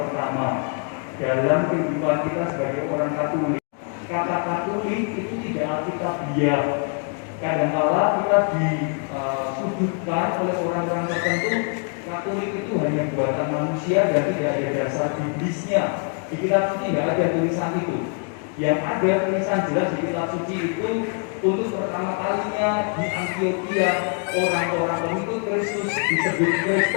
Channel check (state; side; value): quieter; right; 39.9 dB